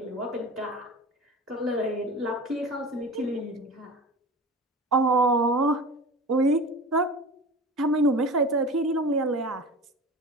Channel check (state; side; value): normal; both; correlation 0.34